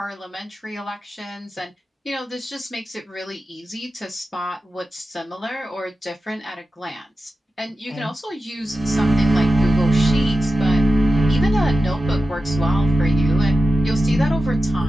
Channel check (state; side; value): normal; both; correlation 0.92